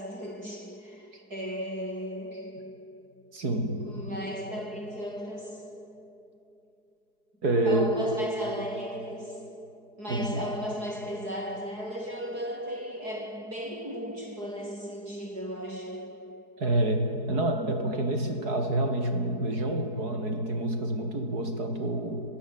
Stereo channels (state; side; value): late; left; 4.7 ms